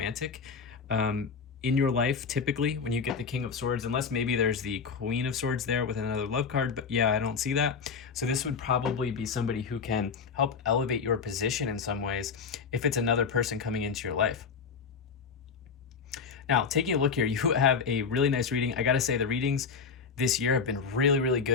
in your life, typically, when you get the King of Swords, unless maybe there's the Queen of Swords there with another love card, but yeah, I don't see that. So this would probably be somebody who can help elevate your position in some ways if it's another person coming into your life. Now, taking a look here, you have a really nice reading. I gotta say, the readings this year have been really, really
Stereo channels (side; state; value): right; quieter; 5.6 dB